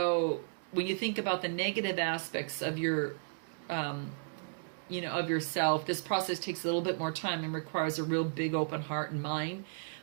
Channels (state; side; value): silent; left; digital silence